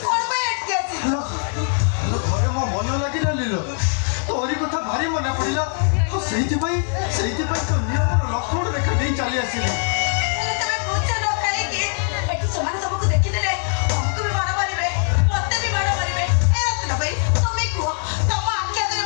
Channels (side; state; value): right; silent; 56 dB below the other